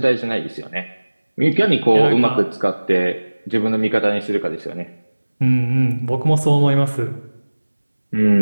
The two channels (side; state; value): both; inverted; correlation -1.00